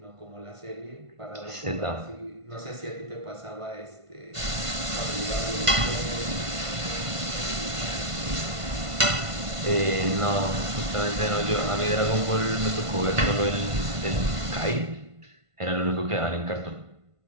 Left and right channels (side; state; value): left; late; 1.5 ms